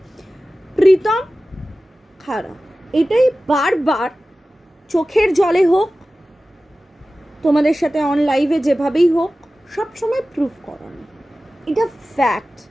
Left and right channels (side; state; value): both; normal; correlation 0.96